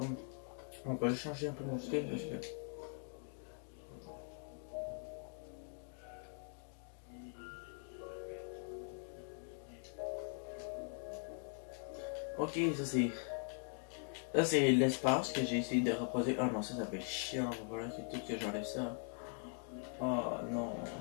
on peut changer un peu mon style parce que. Ok, ça c'est. Ça c'est l'espace que j'ai essayé de reposer. Ah non, ça fait chiant. Voilà, c'est tout que j'enlève ça. Oh non,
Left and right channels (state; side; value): silent; right; 50 dB below the other